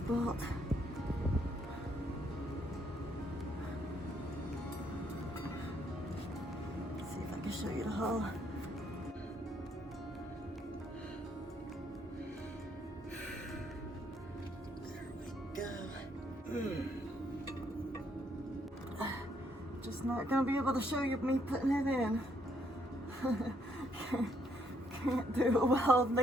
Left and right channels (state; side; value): normal; both; correlation 0.71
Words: Bolt. Let's see if I can show you the hole. There we go. Just not gonna be able to show you me putting it in. Can't do it while holding